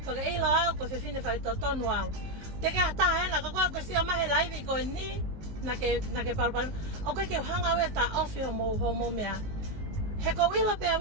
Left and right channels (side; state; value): left; late; 19 ms